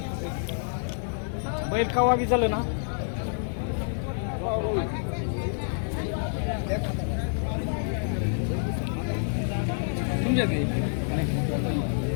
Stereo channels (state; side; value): silent; right; 60 dB below the other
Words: बैल कवा बी चालू ना तुमच्या